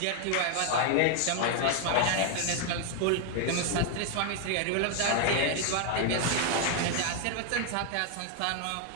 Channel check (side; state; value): both; different; correlation 0.00